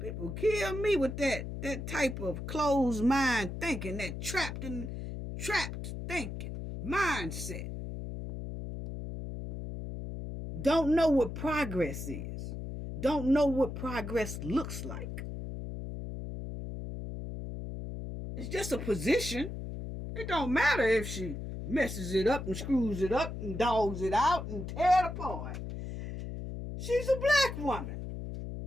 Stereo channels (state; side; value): noise; left; hum, 7 dB below the sound